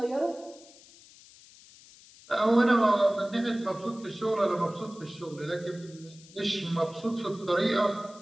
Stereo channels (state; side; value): noise; left; hiss, 23 dB below the sound